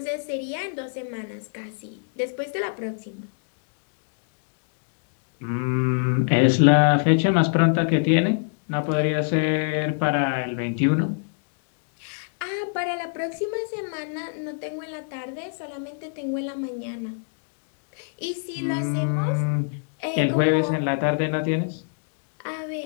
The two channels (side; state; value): right; silent; digital silence